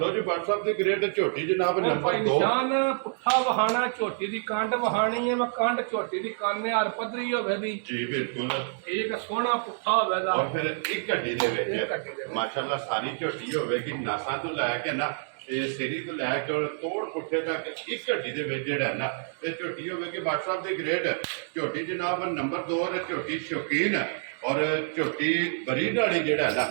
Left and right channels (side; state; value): left; silent; digital silence